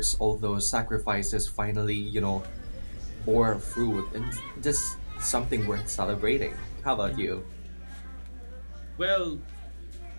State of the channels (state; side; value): inverted; both; correlation -1.00